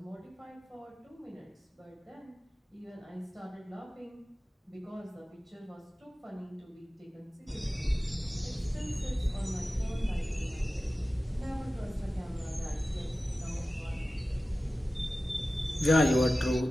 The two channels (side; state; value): both; normal; correlation 0.95